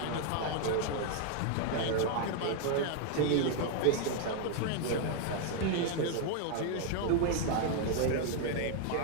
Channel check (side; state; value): both; different; correlation 0.00